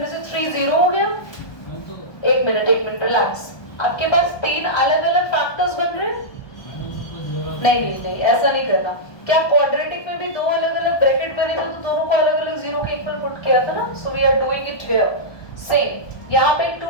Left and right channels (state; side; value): late; right; 1.2 ms